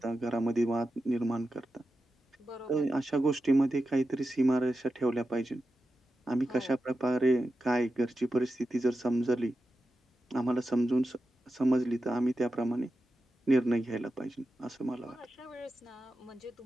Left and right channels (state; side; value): normal; both; correlation 0.91